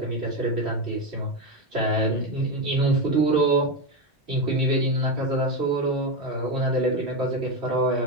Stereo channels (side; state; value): both; normal; correlation 0.12